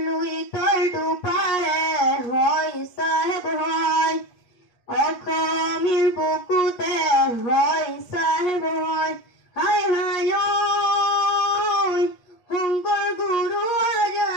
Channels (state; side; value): late; right; 8.3 ms